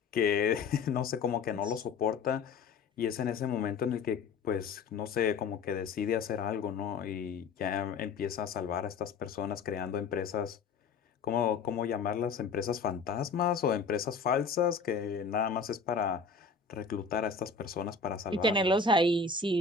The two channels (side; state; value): right; quieter; 4.9 dB